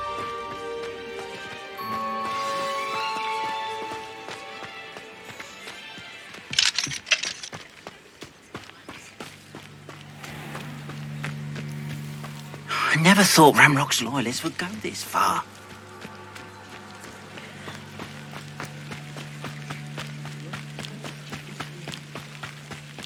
I never thought Ramrock's loyalists would go this far.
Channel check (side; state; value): both; identical; correlation 1.00